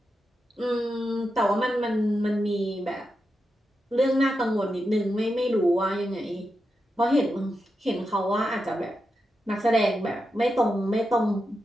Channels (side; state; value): both; normal; correlation 0.88